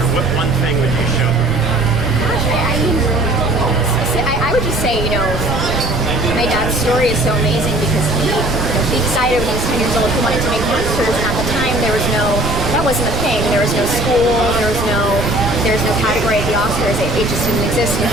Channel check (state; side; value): noise; right; rumble, 8 dB below the sound